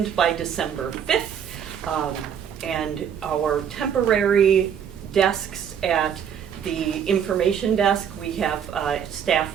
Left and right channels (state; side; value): quieter; left; 8.3 dB